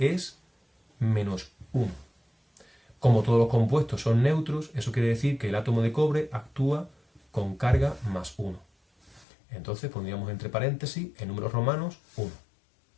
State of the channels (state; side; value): drops out; right; at 9.2 s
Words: -1. Como todos los compuestos son neutros, eso quiere decir que el átomo de cobre actúa con carga +1. Entonces pondríamos entre paréntesis, en números romanos, 1.